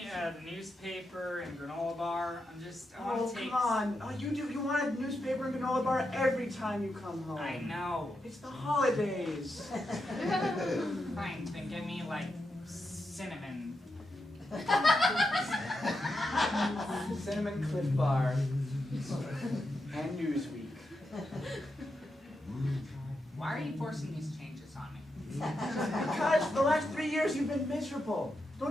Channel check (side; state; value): both; normal; correlation 0.86